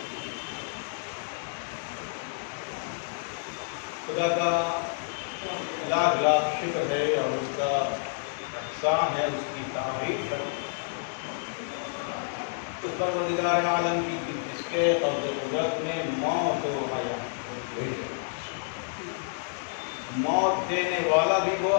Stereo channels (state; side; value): silent; right; digital silence